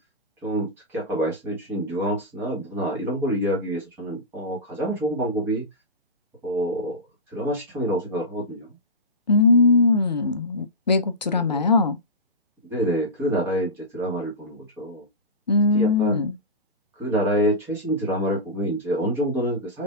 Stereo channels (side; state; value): both; normal; correlation -0.17